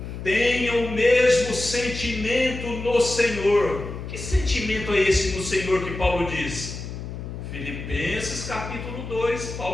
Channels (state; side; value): noise; left; hum, 8 dB below the sound